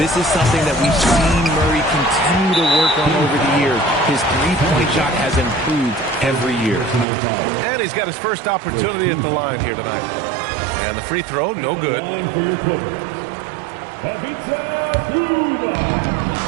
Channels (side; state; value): left; drops out; at 7.1 s